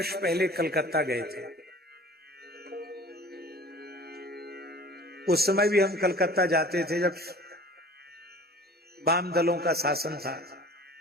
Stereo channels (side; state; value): both; normal; correlation 0.45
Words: पहले कलकत्ता गए थे। उस समय भी हम कलकत्ता जाते थे जब वाम दलों का शासन था।